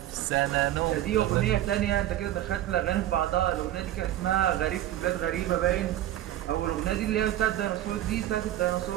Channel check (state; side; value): quieter; left; 13.2 dB